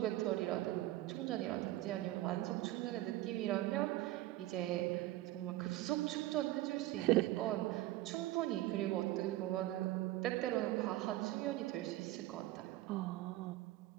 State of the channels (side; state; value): left; quieter; 16.5 dB